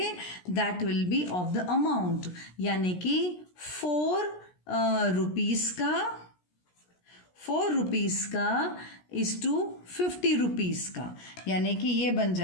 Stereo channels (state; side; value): late; right; 17 ms